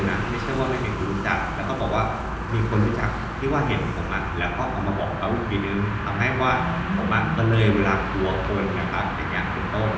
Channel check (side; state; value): both; identical; correlation 1.00